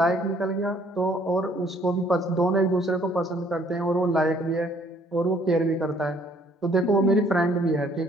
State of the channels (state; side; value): normal; both; correlation 0.62